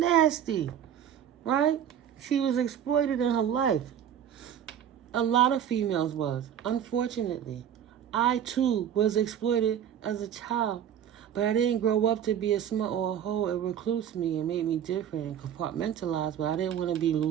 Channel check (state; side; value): quieter; left; 9.5 dB